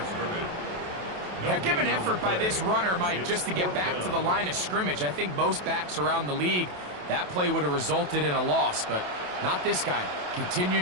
Yeah, give an effort by this runner, Mike, just to get back to the line of scrimmage. I think most backs around the league, that play would have resulted in a loss, but not this guy.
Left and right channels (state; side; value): late; left; 28 ms